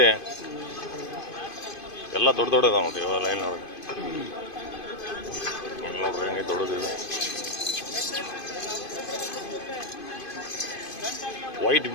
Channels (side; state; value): right; late; 2.5 ms